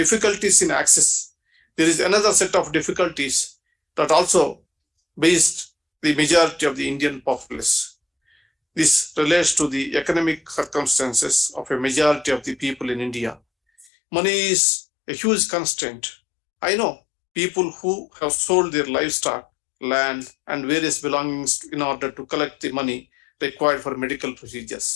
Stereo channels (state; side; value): drops out; right; at 13.9 s